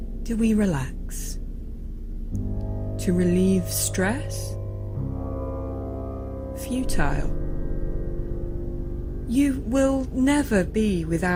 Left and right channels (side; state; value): both; identical; correlation 1.00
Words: do we relax? To relieve stress? Futile. You will never be